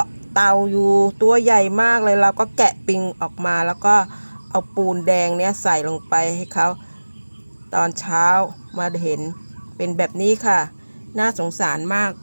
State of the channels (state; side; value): inverted; both; correlation -1.00